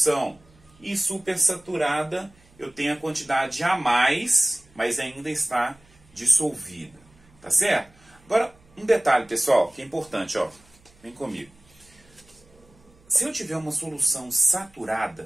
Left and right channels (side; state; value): right; noise; hum, 30 dB below the sound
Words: E supersaturada, eu tenho a quantidade a mais, mas ainda está dissolvida. Tá certo? Agora, um detalhe, pessoal, que é importante, ó. Vem comigo. Se eu tiver uma solução